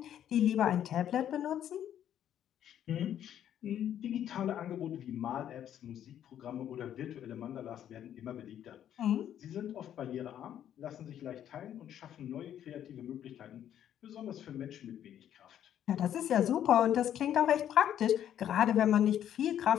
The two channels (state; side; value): quieter; right; 10.4 dB